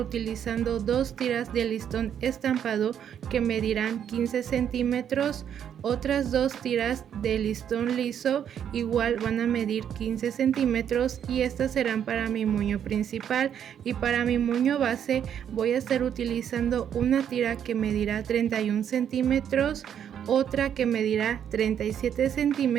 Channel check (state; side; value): quieter; left; 9.0 dB